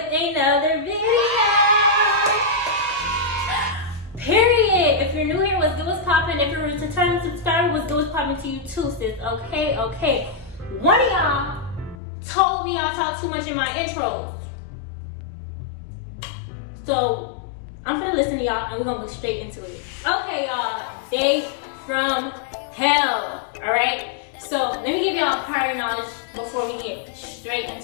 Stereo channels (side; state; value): right; drops out; at 12.0 s